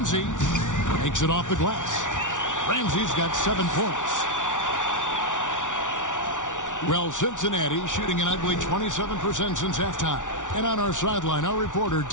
Makes it off the glass. Ramsey's got 7 points. Well, Cincinnati shooting an ugly 27% since halftime. And on our sideline, our reporter,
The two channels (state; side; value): late; right; 0.87 ms